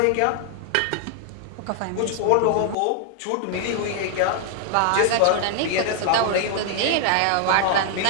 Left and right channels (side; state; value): both; different; correlation 0.00